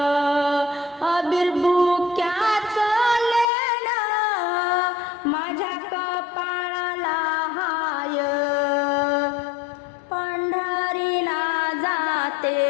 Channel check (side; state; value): right; drops out; at 3.5 s